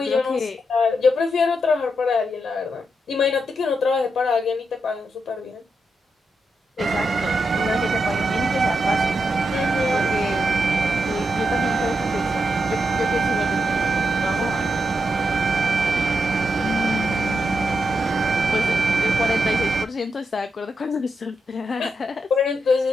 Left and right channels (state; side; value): normal; both; correlation 0.84